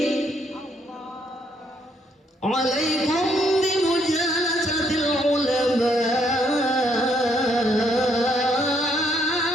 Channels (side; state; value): both; normal; correlation 0.71